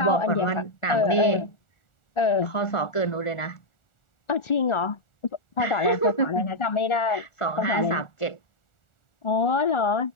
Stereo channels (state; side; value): late; right; 1.4 ms